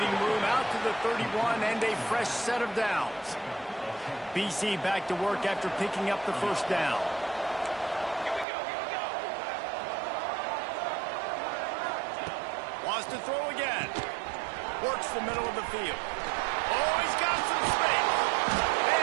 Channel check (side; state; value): left; drops out; at 8.5 s